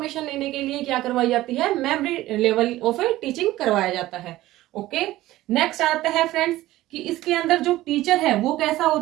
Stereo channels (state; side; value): quieter; left; 16.2 dB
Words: लेने के लिए क्या करवाई जाती है, मेमोरी लेवल ऑफ टीचिंग करवाया जाता है। ओके, नेक्स्ट आता है फ्रेंड्स कि इसके अंदर जो टीचर है वो कैसा